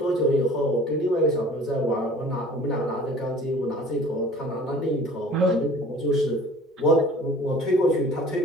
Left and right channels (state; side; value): normal; both; correlation 0.48